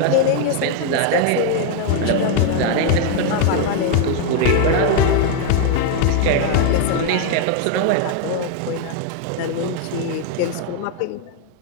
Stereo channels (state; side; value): different; both; correlation 0.00